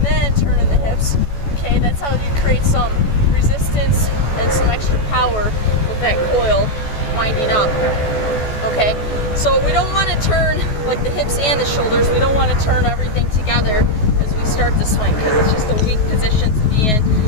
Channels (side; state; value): right; late; 14 ms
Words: then turning the hips. Okay, that's how you create some resistance and some extra power with that coil winding up. Okay, so we don't want to turn like the hips and the shoulders. We don't want to turn everything together as we start the swing because it's just a weak position to be in